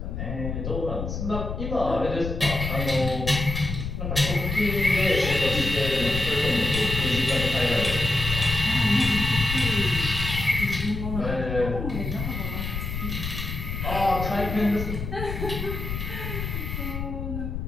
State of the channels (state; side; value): noise; left; rumble, 5 dB below the sound